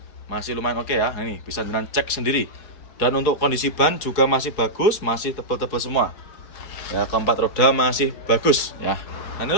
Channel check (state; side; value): late; right; 4.8 ms